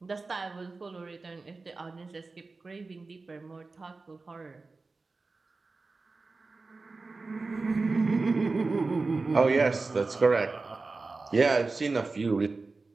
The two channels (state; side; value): quieter; left; 3.8 dB